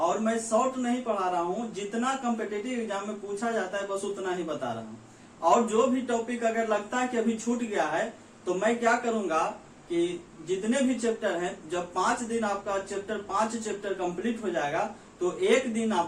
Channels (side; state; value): both; identical; correlation 1.00